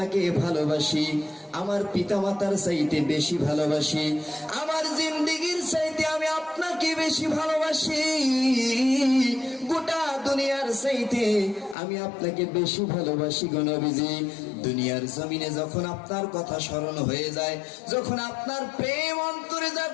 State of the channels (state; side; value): drops out; right; at 11.8 s